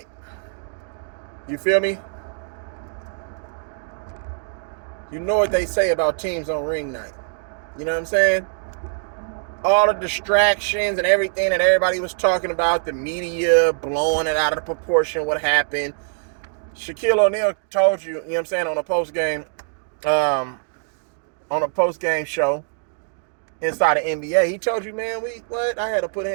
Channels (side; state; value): left; silent; digital silence